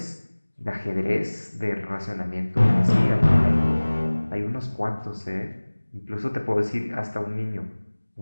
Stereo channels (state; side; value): inverted; both; correlation -1.00